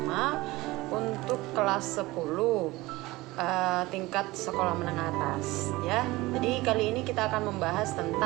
untuk kelas 10 tingkat sekolah menengah atas ya. Jadi kali ini kita akan membahas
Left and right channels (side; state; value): left; quieter; 20.1 dB